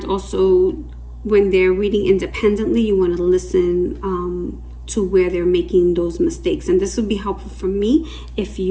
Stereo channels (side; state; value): both; identical; correlation 1.00